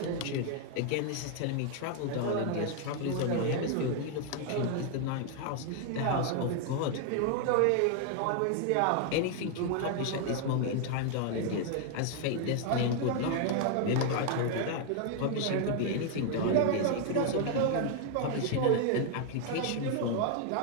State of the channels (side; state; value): both; different; correlation 0.00